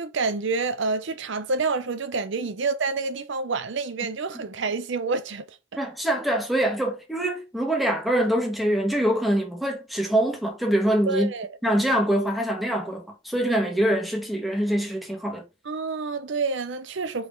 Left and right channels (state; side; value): normal; both; correlation 0.49